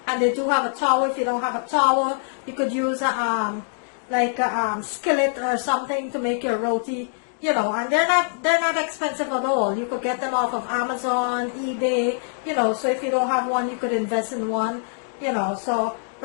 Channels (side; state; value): right; silent; digital silence